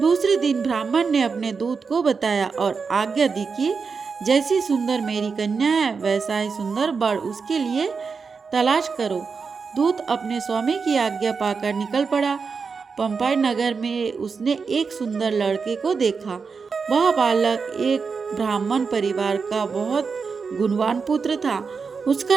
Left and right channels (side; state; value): left; quieter; 5.2 dB